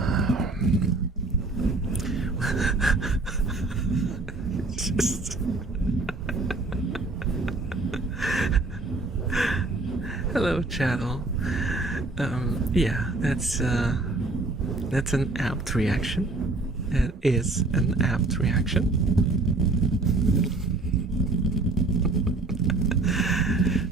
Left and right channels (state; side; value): quieter; left; 3.2 dB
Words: just hello, chattel. Yeah, that's an apt reaction. It is an apt reaction.